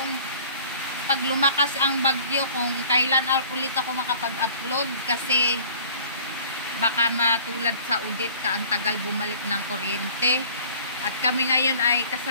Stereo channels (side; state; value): both; inverted; correlation -0.50